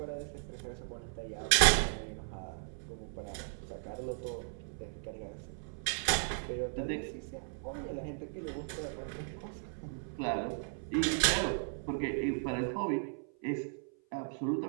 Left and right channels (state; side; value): silent; left; 54 dB below the other